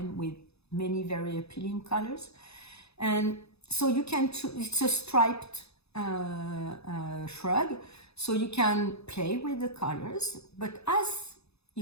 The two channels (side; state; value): right; late; 0.79 ms